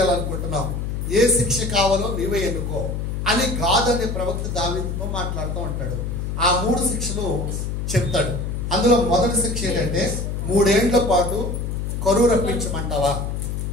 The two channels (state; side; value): noise; left; hum, 3 dB below the sound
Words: ఏ శిక్ష కావాలో నీవే ఎన్నుకో అని గాద్ అనే ప్రవక్త దావీదుతో మాట్లాడుతూ ఉంటాడు. ఆ 3 శిక్షలు చెప్తాడు. అందులో మొదటి శిక్ష ఏంటంటే 3 ఏండ్ల పాటు కరువు రప్పించమంటావా,